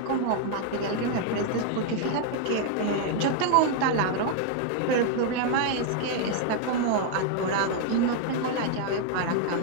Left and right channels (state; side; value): different; both; correlation 0.00